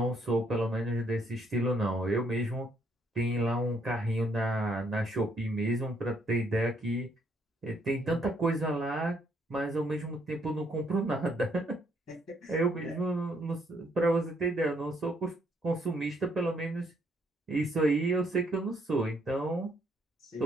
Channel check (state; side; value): normal; both; correlation 0.70